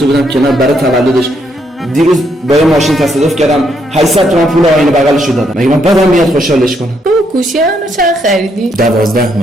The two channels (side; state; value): both; normal; correlation 0.75